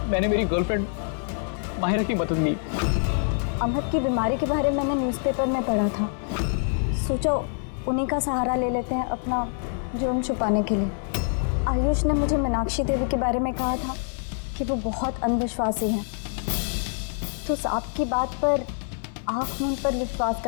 मेरी गर्लफ्रेंड माहिरा की मदद ली। अमहद की बीमारी के बारे में मैंने न्यूज़पेपर में पढ़ा था, सोचा उन्हीं का सहारा ले लेते हैं अपना जुर्म छुपाने के लिए। आयुष ने मुझे मीनाक्षी देवी के बारे में कहा था कि वो बहुत अंधविश्वासी हैं, तो सांप की बात पर आँख मूंद पर विश्वास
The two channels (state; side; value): silent; right; 61 dB below the other